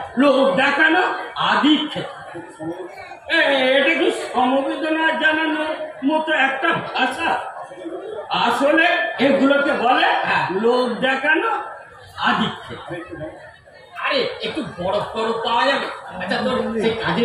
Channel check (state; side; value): identical; both; correlation 1.00